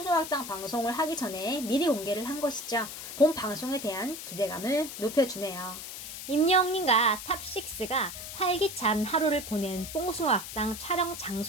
방송을 하기 전에 미리 공개를 한 것이죠. 본 방송에 대한 기대감을 높여주네요. 임영웅님과 탑6가 활기찬 하루를 보낸 뽕숭아학당 촬영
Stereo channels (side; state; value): left; noise; hiss, 9 dB below the sound